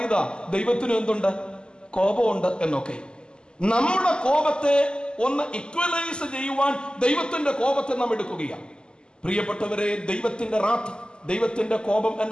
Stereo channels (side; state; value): right; late; 0.048 ms